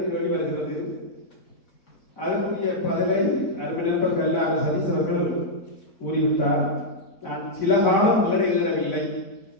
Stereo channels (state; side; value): late; right; 4.1 ms